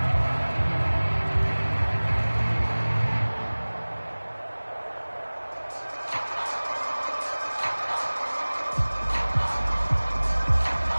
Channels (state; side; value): inverted; both; correlation -1.00